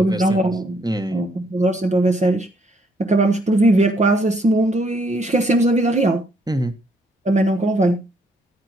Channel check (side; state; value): both; normal; correlation 0.69